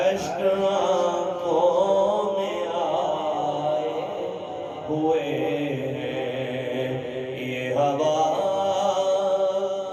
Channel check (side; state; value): both; identical; correlation 1.00